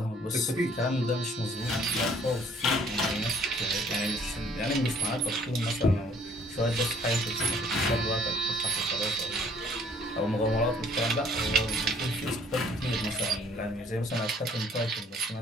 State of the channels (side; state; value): both; normal; correlation 0.59